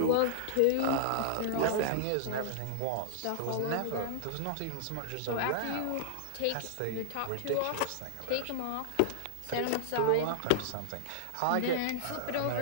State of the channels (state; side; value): different; both; correlation -0.01